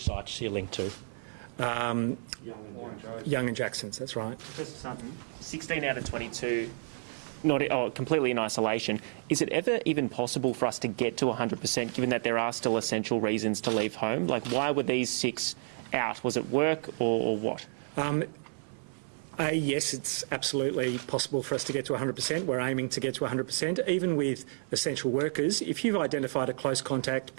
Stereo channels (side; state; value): left; silent; 57 dB below the other